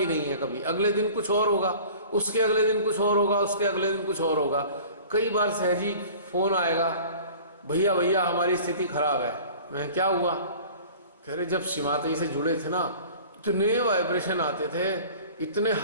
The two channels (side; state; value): both; inverted; correlation -0.44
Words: नहीं है कभी। अगले दिन कुछ और होगा, उसके अगले दिन कुछ और होगा, उसके अगले दिन कुछ और होगा। कई बार सहजी फोन आएगा, भैया भैया हमारी स्थिति खराब है। मैं क्या हुआ? कह रहे जब शिमातई से जुड़े थे ना, इतने वाइब्रेशन आते थे, इतने